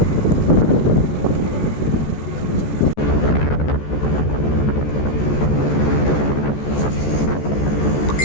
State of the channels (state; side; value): late; right; 14 ms